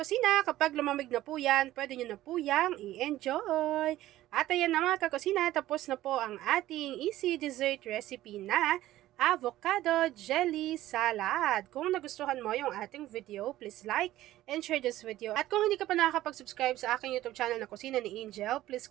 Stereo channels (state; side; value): quieter; left; 14.9 dB